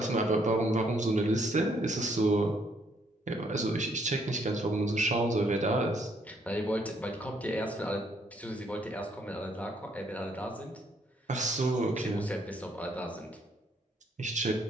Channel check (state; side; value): normal; both; correlation 0.69